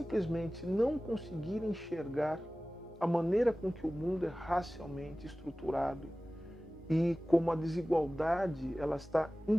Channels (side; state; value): both; normal; correlation 0.97